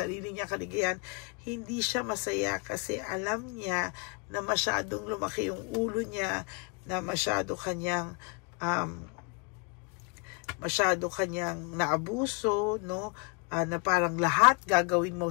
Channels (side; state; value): right; quieter; 33.7 dB